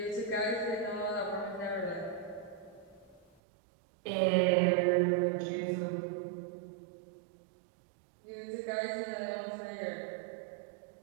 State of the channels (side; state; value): left; drops out; at 3.2 s